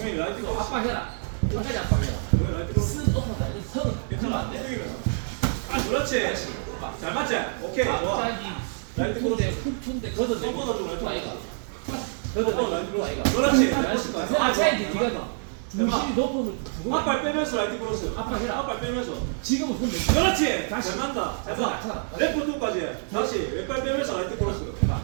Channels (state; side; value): silent; left; digital silence